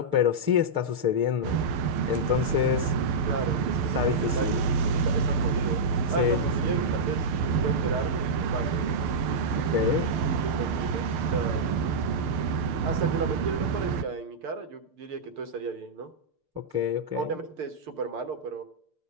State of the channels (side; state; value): left; late; 6.6 ms